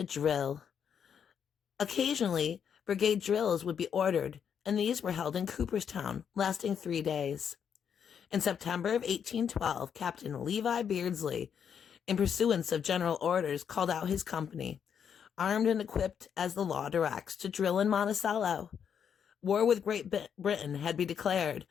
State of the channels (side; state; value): right; quieter; 7.8 dB